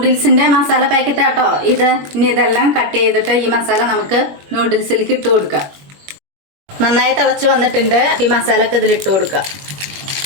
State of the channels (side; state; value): left; late; 21 ms